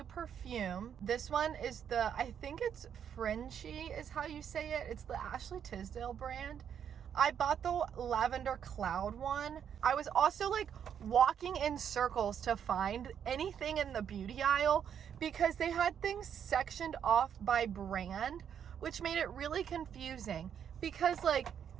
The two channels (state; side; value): quieter; left; 8.5 dB